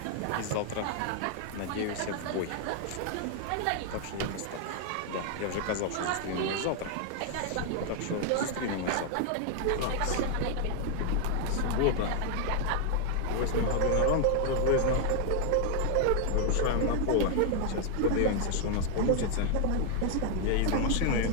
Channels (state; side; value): different; both; correlation 0.00